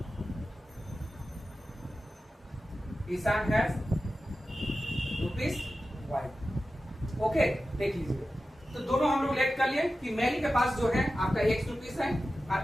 हैज ₹Y। ओके, देख लीजिए, तो दोनों हम लोग लेट कर लिए कि मेरी के पास जो है आपका ₹X है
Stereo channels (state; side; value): normal; both; correlation 0.93